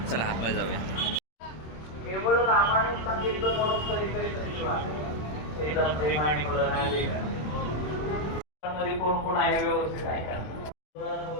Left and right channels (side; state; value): right; late; 26 ms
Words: चला आतमध्ये जाऊया. केवळ रामायण सांगितलं म्हणून मध्ये कोण कोण आहे व्यवस्थित ऐका.